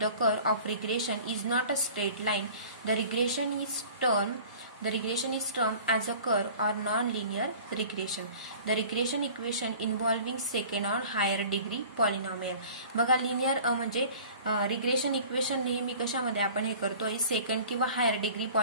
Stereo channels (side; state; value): both; inverted; correlation -0.45